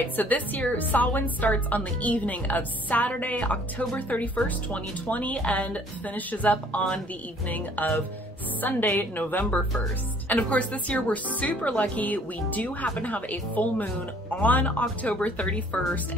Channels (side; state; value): both; normal; correlation 0.58